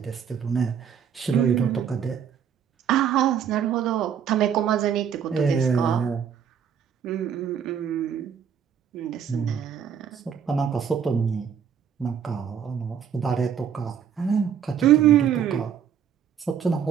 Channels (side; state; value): left; quieter; 8.0 dB